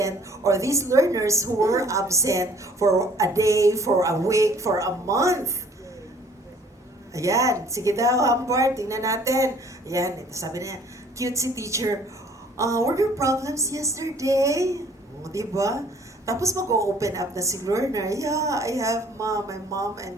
or these learners who were absent for a day, for a week, for a month? Ayan, sige daw, Humbert, tingnan natin. Ayan, sabi niya, cute si teacher. Were there problems yesterday? O, diba? Tapos mag-open up na si learner. Yeah, I have my mom and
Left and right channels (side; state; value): both; normal; correlation 0.56